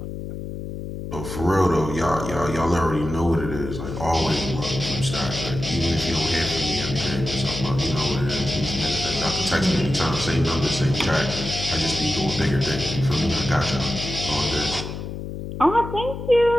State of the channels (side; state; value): left; noise; hum, 7 dB below the sound